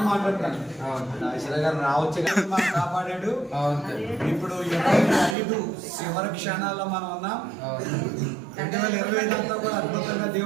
మాట్లాడతాను. ఈశ్వర గారు రావచ్చు కానీ మనం కాపాడాడు. ఇప్పుడు 25 చివరి క్షణాల్లో మనం ఉన్నాం. 2025 అంతా కూడా అద్భుతంగా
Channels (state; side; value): drops out; left; at 5.4 s